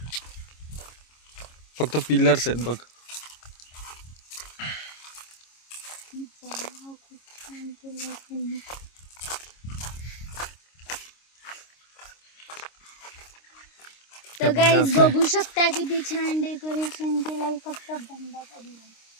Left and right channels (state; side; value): late; right; 26 ms